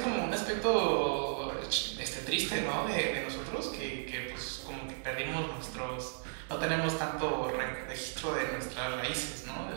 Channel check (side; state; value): left; silent; digital silence